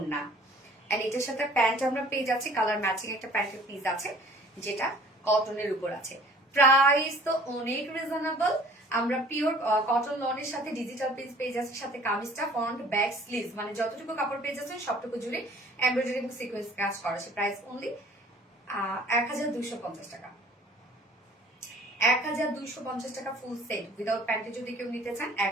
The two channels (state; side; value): normal; both; correlation 0.52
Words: এন্ড এটার সাথে প্যান্ট আমরা পেয়ে যাচ্ছি কালার ম্যাচিং একটা প্যান্টের পিস আছে, যেটা কটনের উপর আছে। প্রাইস তো অনেক রিজনেবল। আমরা পিওর কটন লনের সাথে ডিজিটাল পিস পেয়ে যাচ্ছি, সাথে কামিজটা ফ্রন্ট ব্যাক স্লিভস, মানে যতটুকু কাপড় পেয়ে যাচ্ছেন সবটুকু জুড়ে এমব্রয়ডারি এবং সিকোয়েন্স কাজ করা আছে। প্রাইস অনলি 1250 টাকা। 1250 টাকা ফুল সেট উইদাউট প্যান্টে যদি কেউ নিতে চান